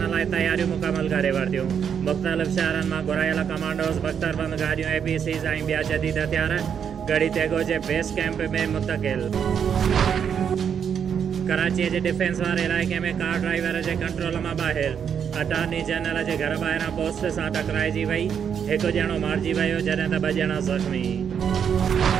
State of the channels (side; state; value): left; quieter; 7.7 dB